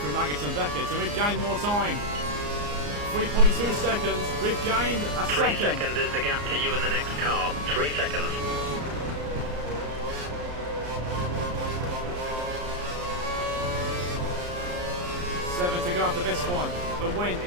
Maggots and Beckett, and we've gained more time. 3.2 seconds, we've gained a 3 second. seconds is the gap to you in the next car. 3 seconds. Seven to go after this one. The win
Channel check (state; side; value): late; left; 34 ms